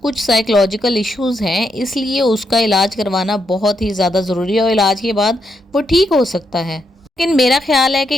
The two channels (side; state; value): both; normal; correlation 0.80